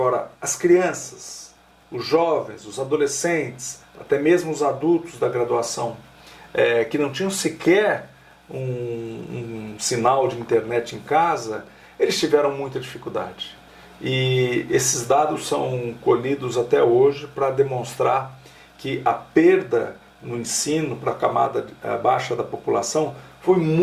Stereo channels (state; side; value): identical; both; correlation 1.00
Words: as crianças, os jovens, os adolescentes, até mesmo os adultos da graduação, que não tinham sequer um sinal de internet em casa, eles tiveram muita dificuldade. E esses dados são colhidos até hoje para demonstrar que a perda no ensino para a camada baixa da população foi